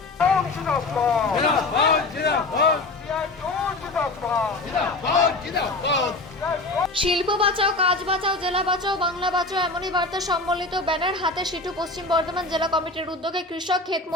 বাঁচাও, কাজ বাঁচাও, জেলা বাঁচাও, বাংলা বাঁচাও এমনই বার্তা সম্বলিত ব্যানার হাতে সিটু পশ্চিম বর্ধমান জেলা কমিটির উদ্যোগে কৃষক, ক্ষেত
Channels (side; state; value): right; quieter; 3.1 dB